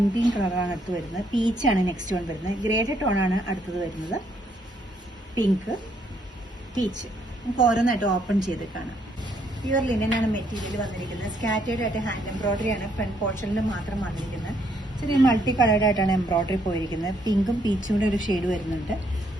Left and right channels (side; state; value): both; normal; correlation 0.71